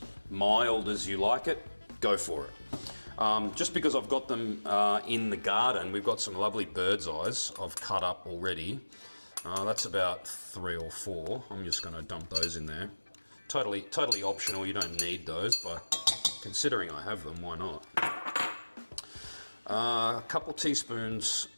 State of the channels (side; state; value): both; inverted; correlation -1.00